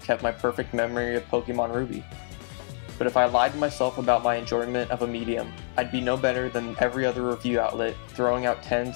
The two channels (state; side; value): silent; right; 60 dB below the other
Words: kept my perfect memory of Pokemon Ruby. But if I lied to myself about my enjoyment of a medium, I'd be no better than every other review outlet throwing out